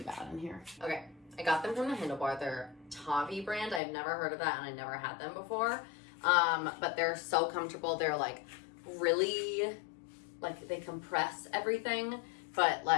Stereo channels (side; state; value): right; drops out; at 3.8 s